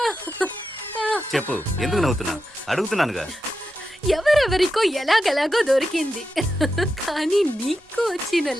చెప్పు ఎందుకు నవ్వుతున్నా? అడుగుతున్నానుగా. ఎవరెవరికో ఎలాగెలాగో దొరికింది, కానీ నీకు వచ్చిన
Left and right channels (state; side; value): normal; both; correlation 0.88